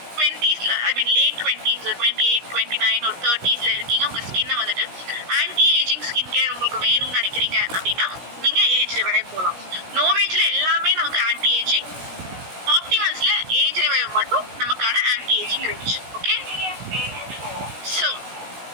20s ஐ மீன் லேட் 20s 28 29 ஒரு 30sல இருக்கீங்க, உங்க ஸ்கின்னை வந்துட்டு ஆன்டி ஏஜிங் ஸ்கின் கேர் உங்களுக்கு வேணும்னு நினைக்கிறீங்க அப்படின்னா நீங்க ஏஜ் ரிவைவ் போகலாம். நோவேஜ்ல எல்லாமே நமக்கு ஆன்டி ஏஜிங், ஆப்டிமல்ஸ்ல ஏஜ் ரிவைவ் மட்டும் நமக்கான anti ageing range. Okay, so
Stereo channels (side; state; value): left; late; 16 ms